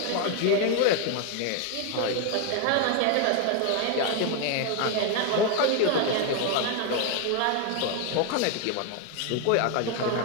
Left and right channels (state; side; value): different; both; correlation 0.01